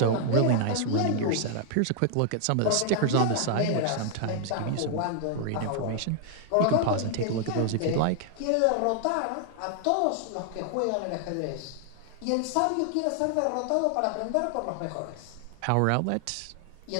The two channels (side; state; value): both; different; correlation 0.00